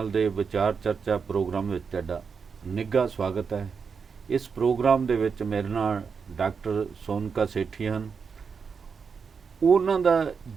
के विचार चर्चा प्रोग्राम में तुहाडा निघा स्वागत है। इस प्रोग्राम दे विच मेरे नाल डॉक्टर सोनका सेठी हैं। उन्हां दा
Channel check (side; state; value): left; quieter; 5.8 dB